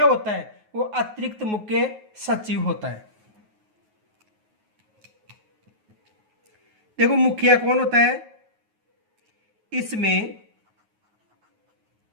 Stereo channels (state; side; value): late; left; 9.4 ms